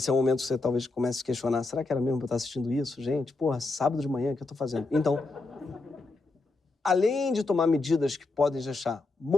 é o momento que você talvez comece a se questionar, será que era mesmo para eu estar assistindo isso? Gente, porra, sábado de manhã, o que eu estou fazendo? Então, além de tomar medidas que podem deixar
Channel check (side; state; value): right; quieter; 3.4 dB